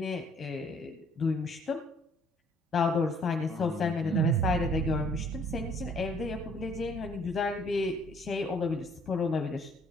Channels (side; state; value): both; normal; correlation 0.61